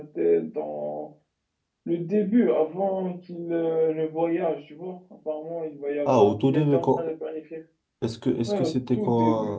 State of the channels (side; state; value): both; identical; correlation 1.00